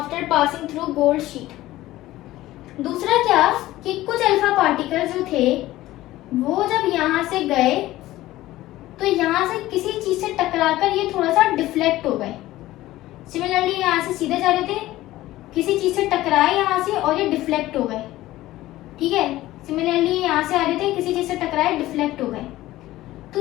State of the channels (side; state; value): right; quieter; 16.2 dB